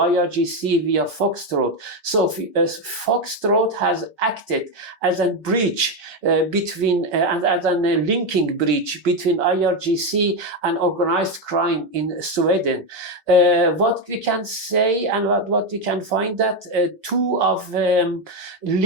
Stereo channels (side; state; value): both; normal; correlation 0.08